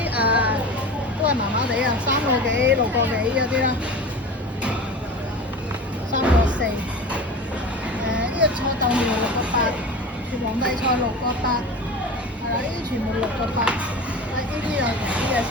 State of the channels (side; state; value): both; normal; correlation 0.33